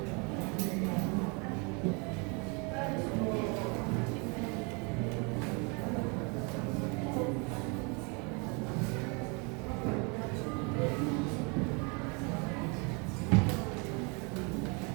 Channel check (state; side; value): quieter; left; 32.0 dB